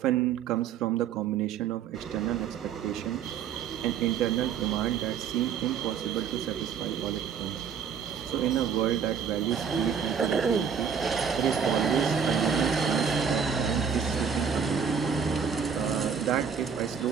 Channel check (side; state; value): left; quieter; 7.1 dB